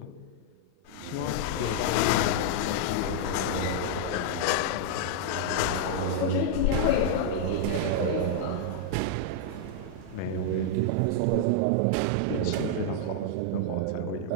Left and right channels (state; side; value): different; both; correlation -0.01